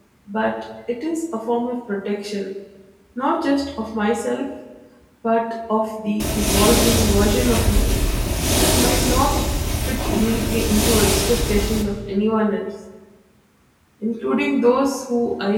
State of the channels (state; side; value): identical; both; correlation 1.00